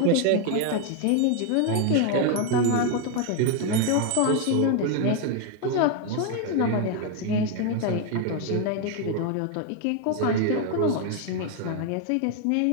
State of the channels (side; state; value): both; different; correlation 0.01